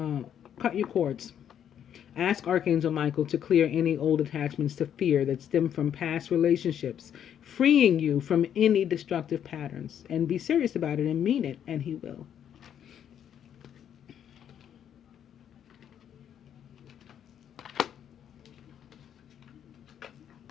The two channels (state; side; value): quieter; right; 9.3 dB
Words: cut your cords. Ask Archangel Michael to clear any old attachments to fear that stem from past relationships, freeing you from any destructive patterns. And be serious about it and mean it, and he will.